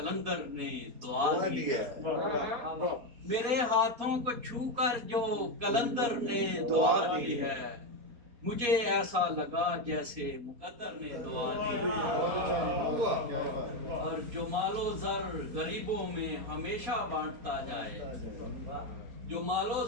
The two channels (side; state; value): left; late; 4.2 ms